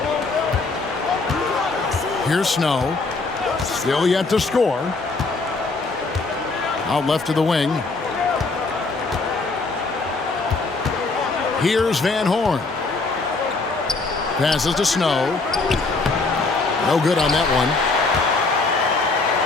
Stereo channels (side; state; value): right; quieter; 3.7 dB